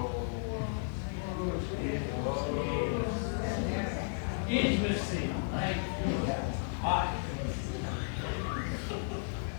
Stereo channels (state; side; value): silent; right; digital silence